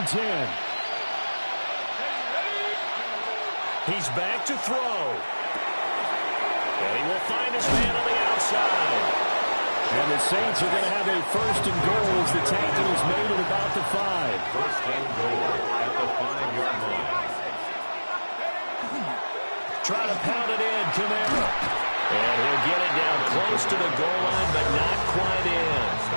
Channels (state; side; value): inverted; both; correlation -1.00